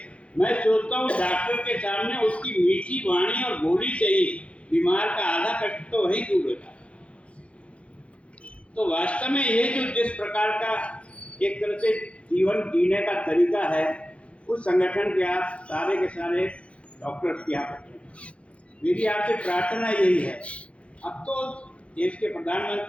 मैं सोचता हूँ डॉक्टर के सामने उसकी मीठी वाणी और बोली से ही बीमार का आधा कष्ट तो वही दूर होता है। तो वास्तव में ये जो जिस प्रकार का एक तरह से जीवन जीने का तरीका है, उस संगठन के आप सारे के सारे डॉक्टर्स की आप मेरी आपसे प्रार्थना यही है। अब तो देश के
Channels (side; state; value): right; late; 0.062 ms